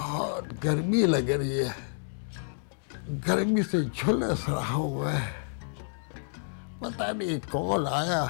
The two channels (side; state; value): right; silent; digital silence